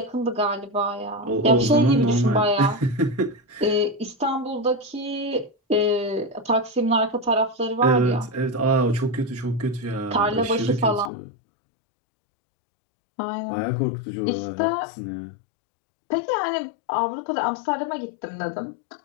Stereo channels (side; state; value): right; drops out; at 11.1 s